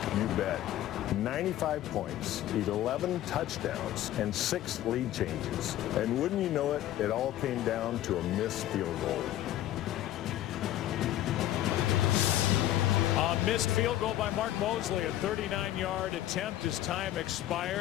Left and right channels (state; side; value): quieter; right; 13.5 dB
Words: You bet. 95 points, 11 touchdowns, and 6 lead changes. And wouldn't you know it, it all came down to a missed field goal. A missed field goal by Mark Mosley, a 39-yard attempt as time